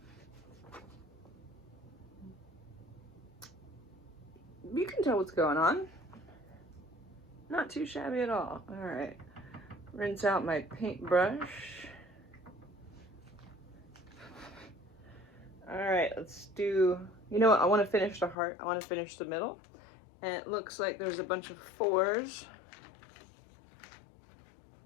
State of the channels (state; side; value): drops out; right; at 18.4 s